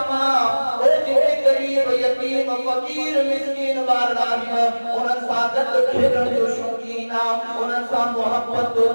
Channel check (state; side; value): inverted; both; correlation -1.00